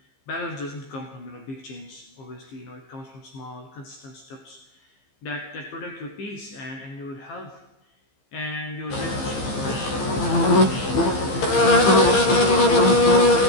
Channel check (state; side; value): late; right; 15 ms